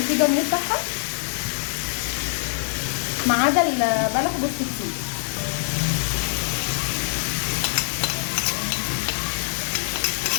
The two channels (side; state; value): right; silent; 58 dB below the other